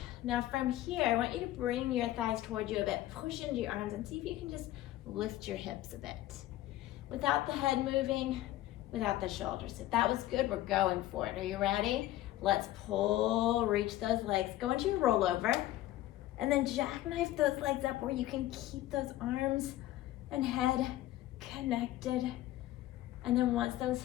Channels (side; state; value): right; quieter; 15.0 dB